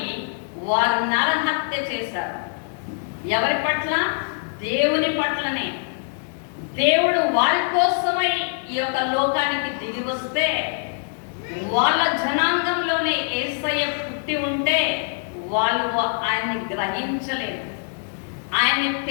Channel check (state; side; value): silent; right; 63 dB below the other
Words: వారు నరహత్య చేశారు. ఎవరి పట్ల? దేవుని పట్లనే. దేవుడు వారి కోసమై ఈ యొక్క లోకానికి దిగి వస్తే వాళ్ళ జనాంగంలోనే యేసయ్య పుట్టి ఉంటే వాళ్ళు ఆయన్ని గ్రహించలేదు, ఆయన్ని